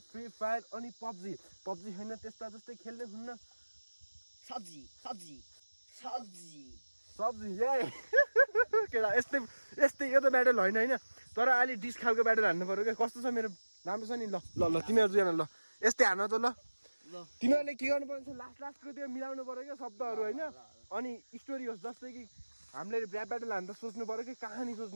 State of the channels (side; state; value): both; inverted; correlation -1.00